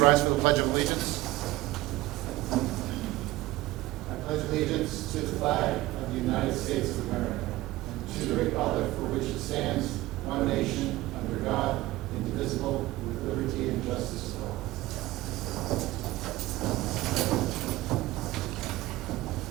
rise for the Pledge of Allegiance. I pledge allegiance to the flag of the United States of America and to the republic for which it stands, one nation, under God, indivisible, with liberty and justice for all.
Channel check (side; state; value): left; quieter; 18.0 dB